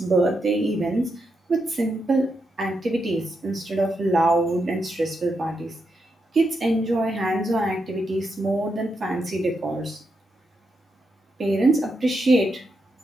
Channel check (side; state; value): both; normal; correlation 0.84